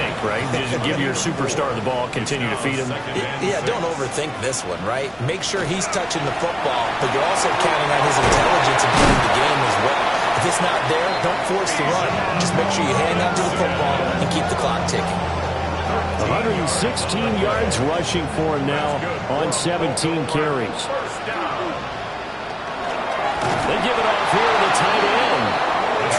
right? Just give your superstar the ball, continue to feed him. Yeah, don't overthink this one, right? Make sure he's touching the football, but you're also counting on his intelligence in playing the game as well. If it's not there, don't force the run. Just make sure you hang on to the football and keep the clock ticking. 116 yards rushing for him now on 17 carries. They give it off here to the tight end.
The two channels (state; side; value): identical; both; correlation 1.00